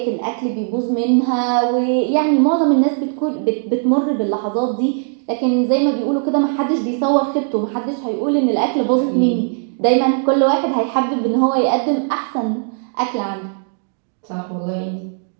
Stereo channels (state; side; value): silent; left; 62 dB below the other